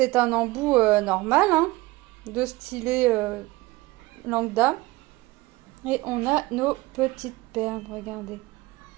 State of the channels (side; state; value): left; quieter; 20.7 dB